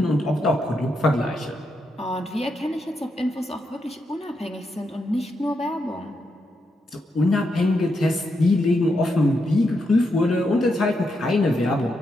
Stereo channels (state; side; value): normal; both; correlation 0.83